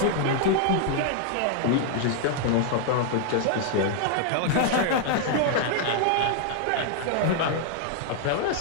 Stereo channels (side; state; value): both; different; correlation 0.00